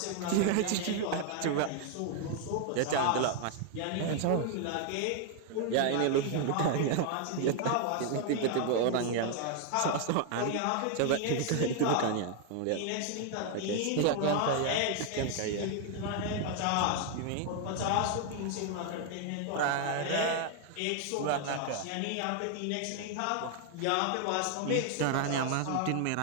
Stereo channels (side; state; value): both; different; correlation 0.00